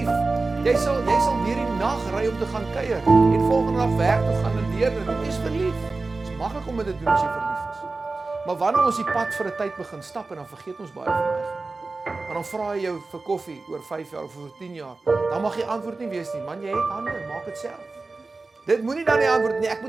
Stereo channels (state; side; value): quieter; left; 3.6 dB